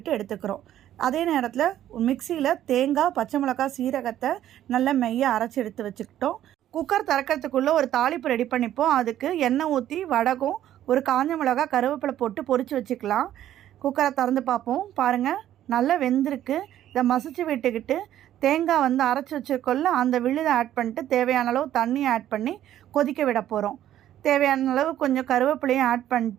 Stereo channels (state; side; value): quieter; left; 12.0 dB